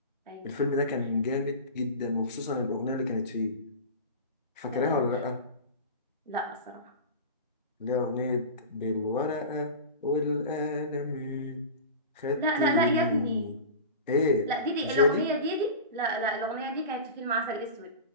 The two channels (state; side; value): inverted; both; correlation -0.30